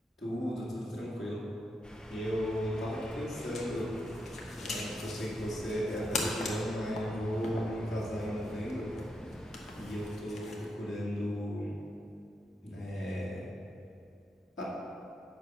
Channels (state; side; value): normal; both; correlation 0.83